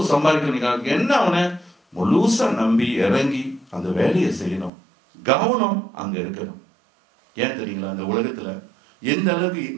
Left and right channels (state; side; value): drops out; left; at 4.7 s